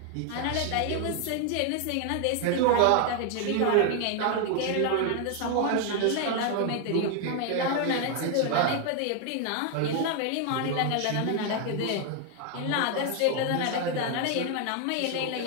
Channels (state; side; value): different; both; correlation 0.01